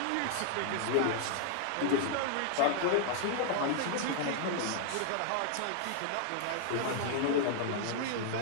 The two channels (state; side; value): different; both; correlation -0.01